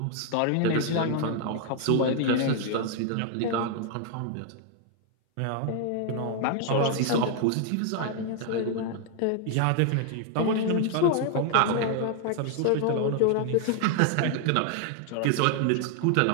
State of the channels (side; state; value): both; different; correlation 0.00